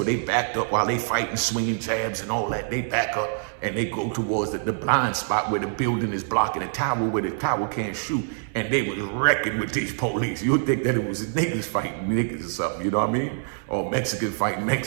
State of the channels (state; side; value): silent; left; 62 dB below the other